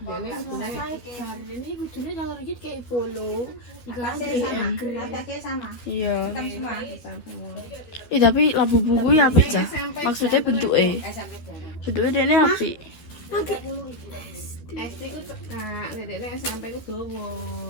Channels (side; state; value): right; late; 12 ms